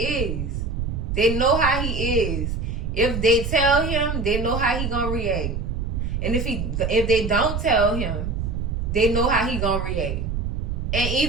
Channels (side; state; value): right; noise; rumble, 2 dB below the sound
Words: They know how he is. If they tell him, they know how he gonna react. And if they don't tell him, they know how he gonna react. And